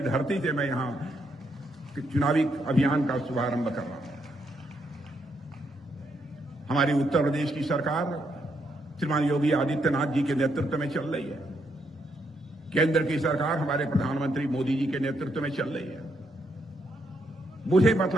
धरती से मैं यहां चुनावी अभियान का शुभारंभ कर रहा हूं। हमारी उत्तर प्रदेश की सरकार श्रीमान योगी आदित्यनाथ जी के नेतृत्व में चल रही है। केंद्र की सरकार हमारे प्रधानमंत्री मोदी जी के नेतृत्व में चल रही है। मुझे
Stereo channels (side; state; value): both; normal; correlation 0.77